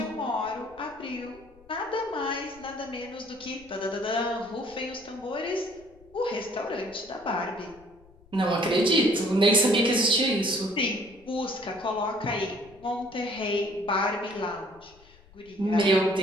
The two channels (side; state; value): left; noise; rumble, 26 dB below the sound